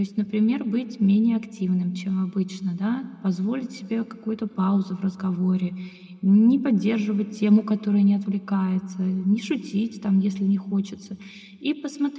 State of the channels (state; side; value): identical; both; correlation 1.00